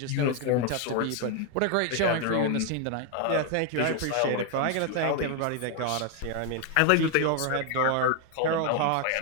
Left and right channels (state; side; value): different; both; correlation 0.01